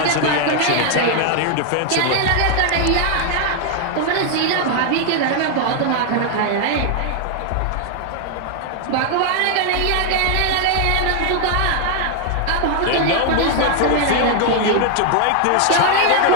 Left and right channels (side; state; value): both; different; correlation 0.00